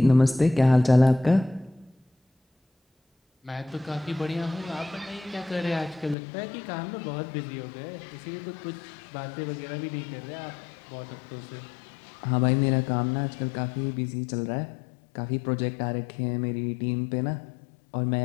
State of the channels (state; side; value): drops out; right; at 6.2 s